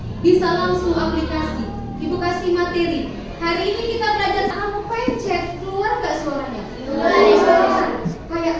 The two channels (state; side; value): identical; both; correlation 1.00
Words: Bisa langsung aplikasi. Ibu kasih materi. Hari ini kita belajar kamu pencet, keluar nggak suaranya? Keluar. Kayak